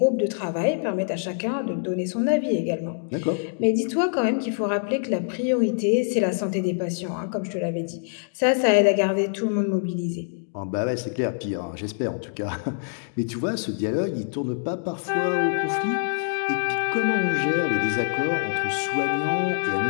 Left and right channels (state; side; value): silent; right; digital silence